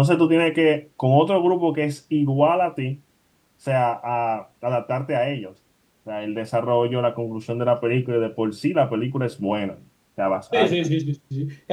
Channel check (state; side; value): identical; both; correlation 1.00